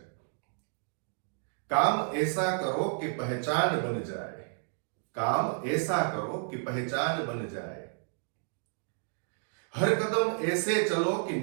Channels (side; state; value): left; silent; digital silence